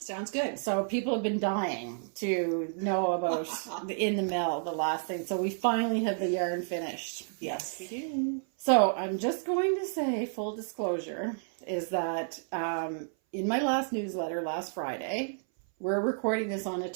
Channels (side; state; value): left; silent; 57 dB below the other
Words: good. So people have been dying to know about the In the Mill, the last thing. So we finally have the yarn finished. Yes, we do. So I'm just going to say, full disclosure, is that in my last newsletter last Friday, we're recording this on a